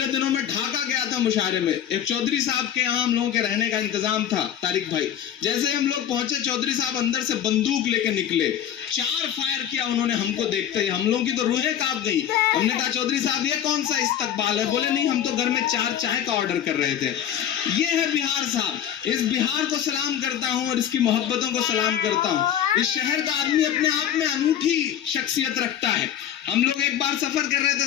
दिनों में ढाका गया था मुशायरे में, एक चौधरी साहब के यहाँ हम लोगों के रहने का इंतजाम था, तारिक भाई। जैसे ही हम लोग पहुंचे, चौधरी साहब अंदर से बंदूक लेके निकले, 4 फायर किया उन्होंने हमको देखते ही। हम लोगों की तो रूहें कांप गई। हमने कहा चौधरी साहब ये कौन सा इस्तकबाल है? बोले नहीं, हम तो घर में 4 चाय का ऑर्डर कर रहे थे। ये है बिहार साहब। इस बिहार को सलाम करता हूँ और इसकी मोहब्बतों को सलाम करता हूँ। इस शहर का आदमी अपने आप में अनूठी शख्सियत रखता है। हम लोग एक बार सफर कर रहे थे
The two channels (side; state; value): right; quieter; 10.0 dB